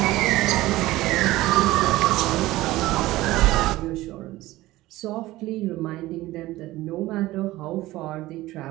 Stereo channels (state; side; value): quieter; left; 17.5 dB